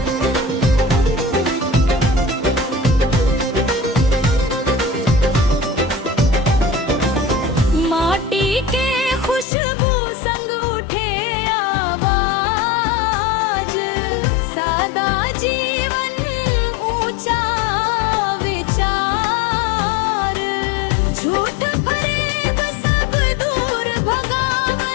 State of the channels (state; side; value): drops out; right; at 9.5 s